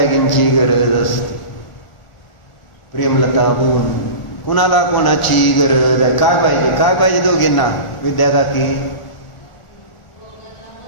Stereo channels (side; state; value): right; late; 1.4 ms